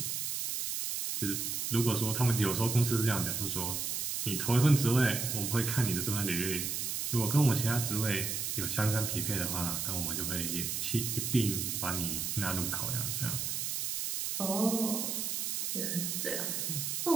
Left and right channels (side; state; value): right; noise; hiss, 1 dB below the sound